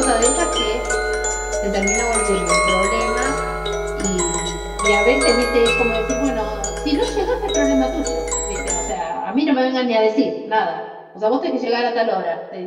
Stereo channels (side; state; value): both; identical; correlation 1.00